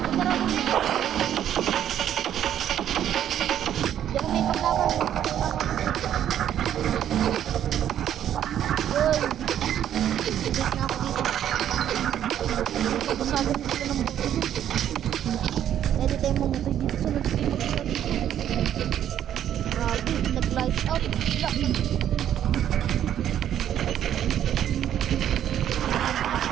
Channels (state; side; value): quieter; left; 10.5 dB